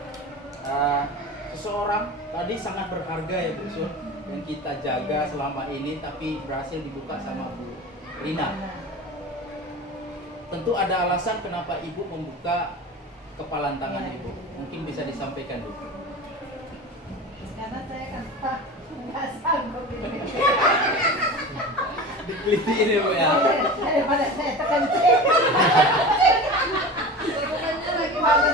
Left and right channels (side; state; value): both; normal; correlation 0.32